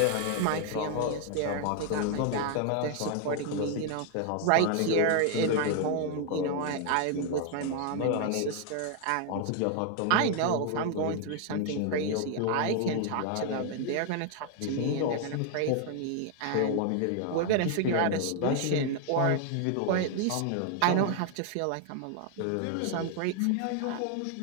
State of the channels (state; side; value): different; both; correlation 0.00